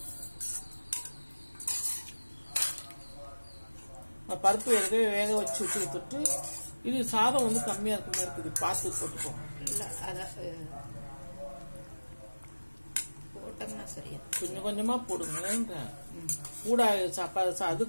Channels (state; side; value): inverted; both; correlation -1.00